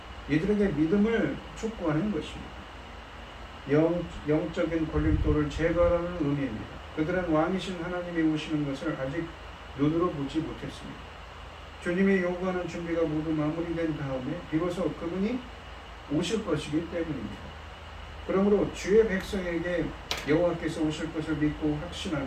이들에게 믿음을 촉구하는 것입니다. 영적인 걸림돌을 제거하라는 의미입니다. 그들은 왕이신 하나님이 오시는 것을 아직 눈으로 보지 못했습니다. 주님이 요구하는 준비가 모두 마무리된 다음에 비로소 그분이 오실 것이기 때문입니다. 그러므로 주의 백성에게 여호와께서 오실 것을 믿고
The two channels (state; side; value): identical; both; correlation 1.00